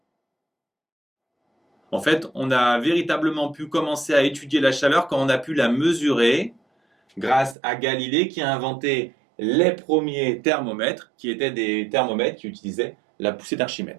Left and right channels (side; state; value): left; drops out; at 7.6 s